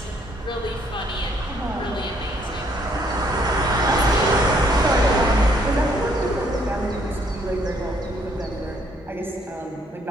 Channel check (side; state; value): both; normal; correlation 0.66